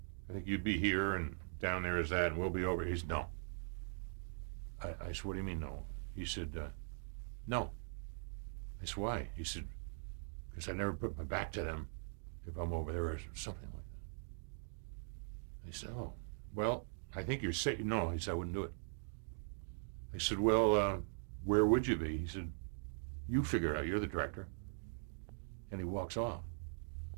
I think you'd be here, and down there is that, and we'll be over." He said, "No." I said, "What do you mean, no?" He said, "No." I said, "Why?" He said, "Because I never put my back to them if I'm over there," or something like that. I said, "Oh, well, I think you're safe." No, he said, "I wouldn't do it." I said, "Well, where would you be?" He said, "You figure it out. You're the director." And he walks off.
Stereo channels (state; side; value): silent; left; digital silence